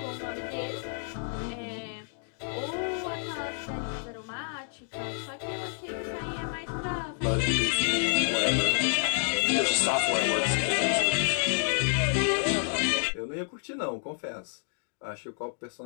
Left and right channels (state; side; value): silent; right; 58 dB below the other